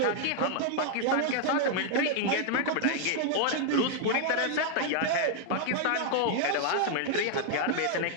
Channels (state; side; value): different; both; correlation 0.00